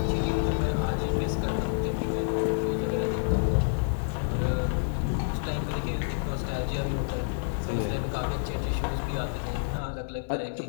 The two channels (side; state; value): right; silent; 59 dB below the other